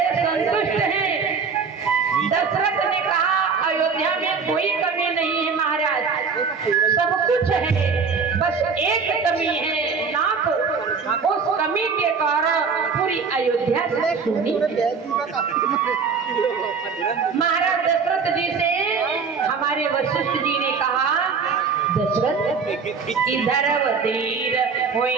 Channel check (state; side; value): quieter; left; 5.4 dB